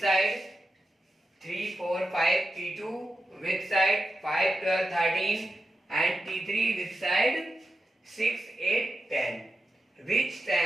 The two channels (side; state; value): both; normal; correlation 0.90